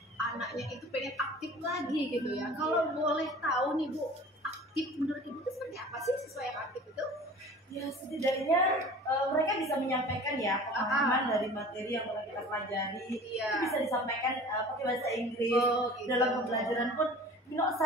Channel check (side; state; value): both; normal; correlation 0.42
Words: anaknya itu pengen aktif lagi gitu ya. Kalau boleh tahu nih Bu, aktif menurut Ibu itu seperti apa sih siswa yang aktif itu? Ya setidaknya mereka bisa menyampaikan ya pemahaman dari materi yang telah kita pelajari. Iya. Itu bisa disampaikan pakai bahasa Inggris. Oh, gitu. Dalam pembelajaran pun,